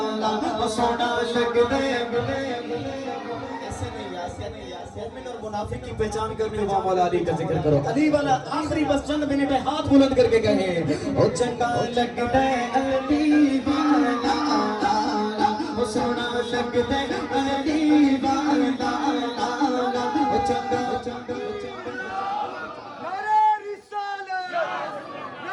सोना लगदा। मोमिन और मुनाफिक की पहचान करने वाला मौला अली का जिक्र करो। अली वाला आखिरी बस चंद मिनट है, हाथ बुलंद करके कहे ओ चंगा लगदा अली वाला सोना लगदा अली वाला ओ चंगा चंगा नारे रिसालत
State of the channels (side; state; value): both; identical; correlation 1.00